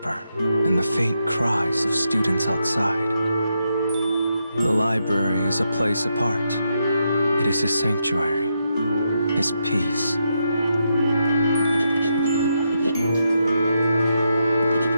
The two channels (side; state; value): both; inverted; correlation -0.83